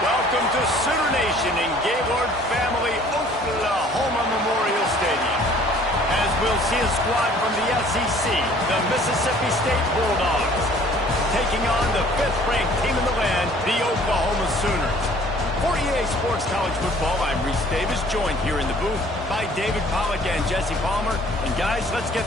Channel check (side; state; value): both; normal; correlation 0.54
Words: Welcome to Sooner Nation in Gaylord Family Oklahoma Memorial Stadium. As we'll see a squad from the SEC, the Mississippi State Bulldogs, taking on the 5th-ranked team in the land, the Oklahoma Sooners. For EA Sports College Football, I'm Reese Davis, joined here in the booth by David Pollack and Jesse Palmer. And guys, let's